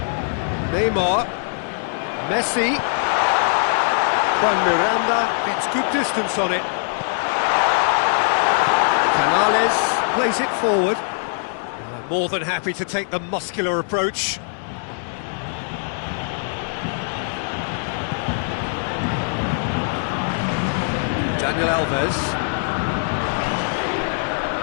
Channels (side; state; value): right; silent; digital silence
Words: Neymar. Messi. Juan Miranda gets good distance on it. Canales plays it forward. More than happy to take the muscular approach. Daniel Alves.